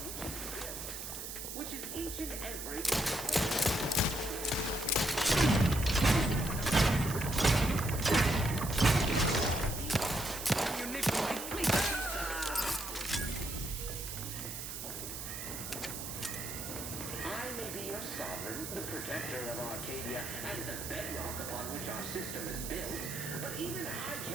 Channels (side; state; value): right; noise; hiss, 7 dB below the sound